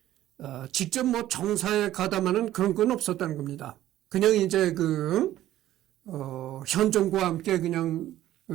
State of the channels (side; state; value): left; quieter; 13.6 dB